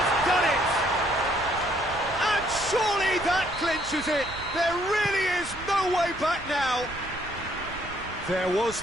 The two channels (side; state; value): right; noise; rumble, 15 dB below the sound